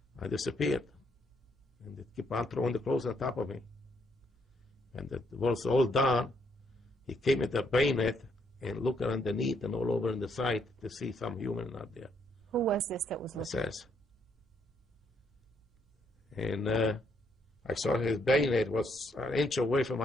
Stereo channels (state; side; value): normal; both; correlation 0.73